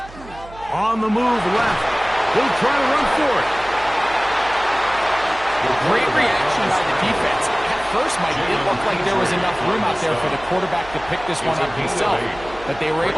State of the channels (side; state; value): right; noise; hum, 18 dB below the sound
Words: On the move left. He'll try to run for it. Great reaction by the defense. At first, Mike, it looked like there was enough room out there for the quarterback to pick this one up himself, but they were